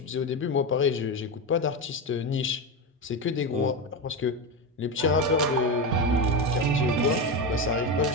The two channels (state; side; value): normal; both; correlation 0.16